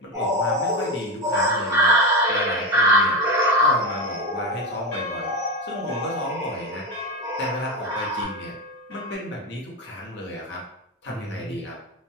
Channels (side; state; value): both; normal; correlation 0.16